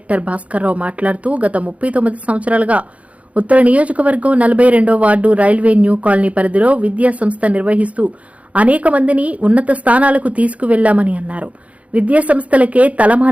భాస్కర్రావు మాట్లాడుతూ గత 39 సంవత్సరాలుగా ఉత్తర నియోజకవర్గం 42వ వార్డు రైల్వే న్యూ కాలనీ పరిధిలో విద్యా సంస్థ నిర్వహిస్తూ అనేక మందిని ఉన్నత స్థానాలకు తీసుకువెళ్లామని అన్నారు. విద్యా సంస్థలకే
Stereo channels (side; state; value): left; late; 0.066 ms